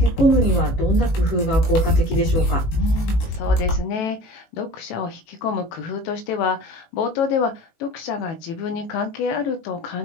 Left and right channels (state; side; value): late; right; 18 ms